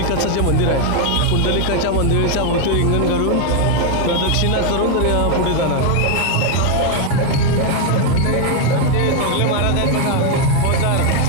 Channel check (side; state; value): both; different; correlation 0.01